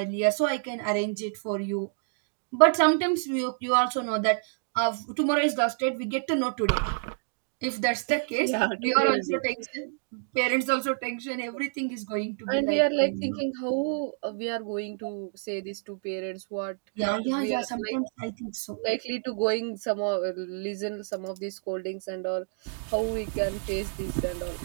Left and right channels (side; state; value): left; silent; digital silence